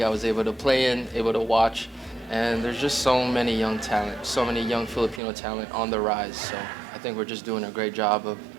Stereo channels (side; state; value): left; drops out; at 5.2 s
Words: I was able to play in, able to watch, and there's just so many young talent, so many young Filipino talent on the rise. So I think we're just doing a great job of